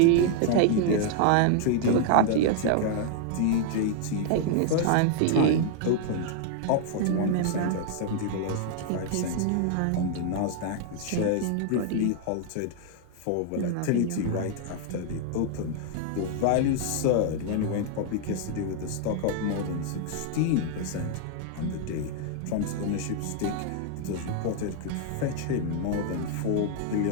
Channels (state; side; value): different; both; correlation 0.00